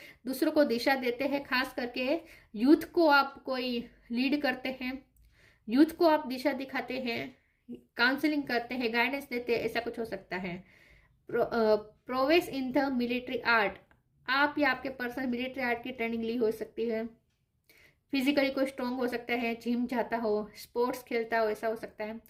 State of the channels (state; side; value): identical; both; correlation 1.00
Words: दूसरों को दिशा देते हैं, खास करके यूथ को आप कोई लीड करते हैं, यूथ को आप दिशा दिखाते हैं, काउंसलिंग करते हैं, गाइडेंस देते हैं, ऐसा कुछ हो सकता है। Prowess in the military art. आप या आपके पर्सन मिलिट्री आर्ट की ट्रेनिंग ली हो सकती है। फिजिकली कोई स्ट्रॉन्ग हो सकता है, जिम जाता हो, स्पोर्ट्स खेलता हो, ऐसा हो सकता है।